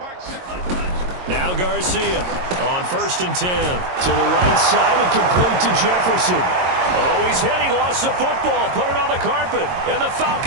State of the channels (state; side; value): late; left; 22 ms